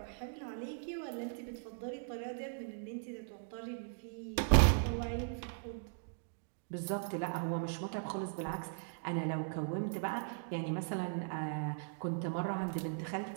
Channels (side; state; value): left; silent; digital silence